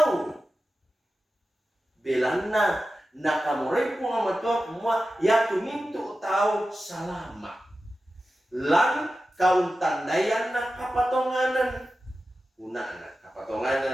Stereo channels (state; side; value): normal; both; correlation 0.93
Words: belanna nakamuray po nga matua kumwa ya tumintu tau salama lang kauntandayan na kapatonganan una na